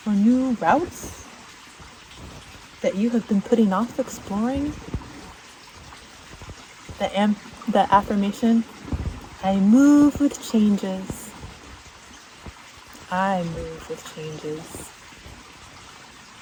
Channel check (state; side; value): identical; both; correlation 1.00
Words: or new routes that you have been putting off exploring? The affirmation, I move with changes. I move with changes.